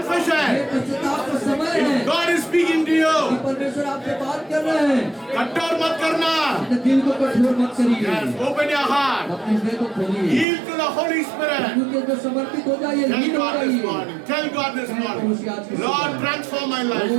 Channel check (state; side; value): drops out; left; at 10.5 s